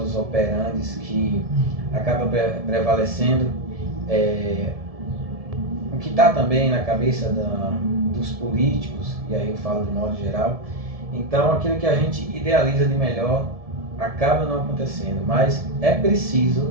operandi que acaba prevalecendo, o que está também na cabeça dos políticos, e aí eu falo de modo geral. Então, aquilo que a gente idealiza de melhor acaba não acontecendo, mas é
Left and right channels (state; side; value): late; left; 1.7 ms